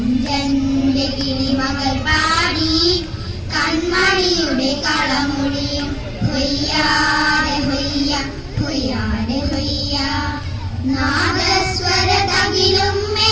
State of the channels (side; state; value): both; identical; correlation 1.00